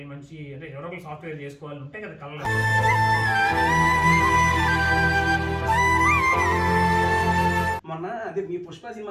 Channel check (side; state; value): both; identical; correlation 1.00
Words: మంచి అంటే ఎవరో ఒకరు సాఫ్ట్వేర్ చేసుకోవాలి ఉంటాయి కదా కళ్ళ. మొన్న అదే మీ పుష్ప